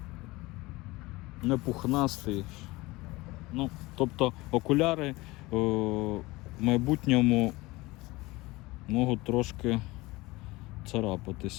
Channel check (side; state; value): right; quieter; 21.2 dB